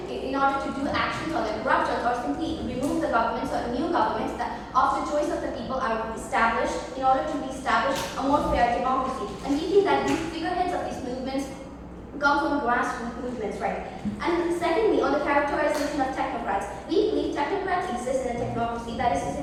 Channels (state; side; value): identical; both; correlation 1.00